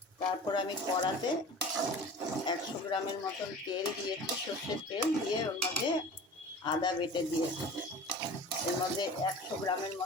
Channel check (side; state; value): both; normal; correlation 0.39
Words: তারপর আমি কড়াতে 100 গ্রামের মতন তেল দিয়েছি, সর্ষের তেল দিয়ে ওর মধ্যে আদা বেটে দিয়েছি। এর মধ্যে 100 গ্রামের